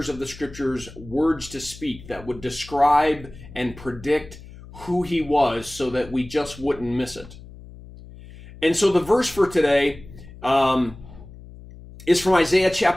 of the scriptures words to speak that would describe and predict who he was so that we just wouldn't miss it. And so the verse for today is from Isaiah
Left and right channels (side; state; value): left; noise; hum, 18 dB below the sound